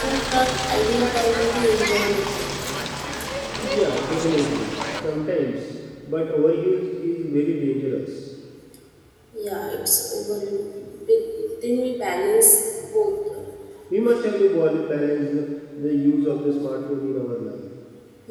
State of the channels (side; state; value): both; identical; correlation 1.00